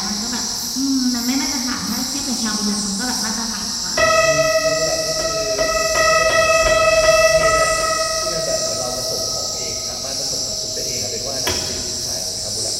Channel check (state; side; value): identical; both; correlation 1.00